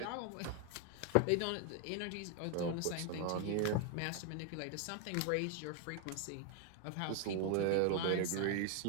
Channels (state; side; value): different; both; correlation 0.01